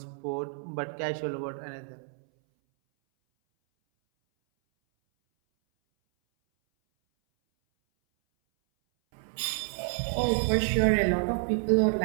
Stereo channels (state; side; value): silent; left; 59 dB below the other